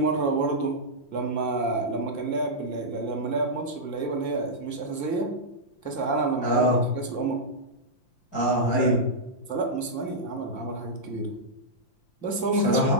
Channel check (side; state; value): right; late; 5.8 ms